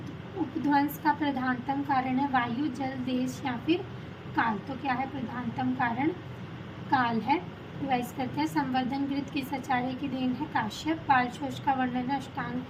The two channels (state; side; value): identical; both; correlation 1.00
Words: उपध्वंस का प्रधानतम कारण है वायु, जल, देश या फिर काल। तो क्या है प्रधानतम कारण? काल है। रिवाइज करते हैं। संवर्धन गृत किस आचार्य की देन है? काश्यप। बाल शोष का वर्णन है अष्टांग